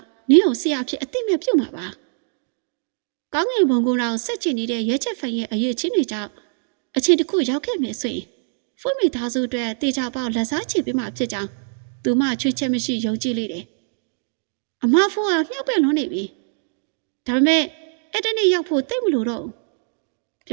နင်းကိုဆရာဖြစ်အသိမဲ့ပြုတ်မှာပါကောင်းငင်ဘုံကောင်ဆက်ချင်နေတဲ့ရဲချက်ဖန်ရဲ့အရေးချင်းတွေကြောင့်အချင်းတစ်ခုရောက်ခဲ့မယ်ဆိုရင်ဖုမိသားစုအတွက်တေချာပေါက်လက်စားချေပေးမှာဖြစ်ကြောင်းသူမချွေးချက်မရှိယုံကြည်လိမ့်တယ်အမဖုကမြှောက်ပင်လွန်းနေပြီဒါပေမဲ့ အဲ့တနေ့ရောက်ဖို့တိတ်မလို့တော့ပြ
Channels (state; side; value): silent; left; digital silence